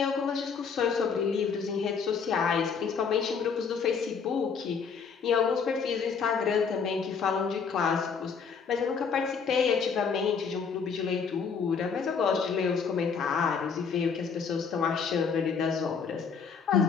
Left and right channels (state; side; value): quieter; right; 6.0 dB